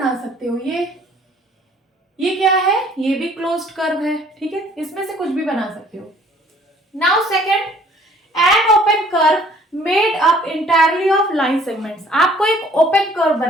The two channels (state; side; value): normal; both; correlation 0.57